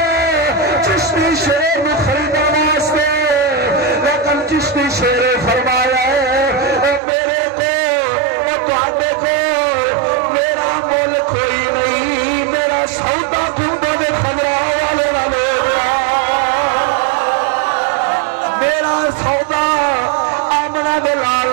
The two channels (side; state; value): left; drops out; at 7.0 s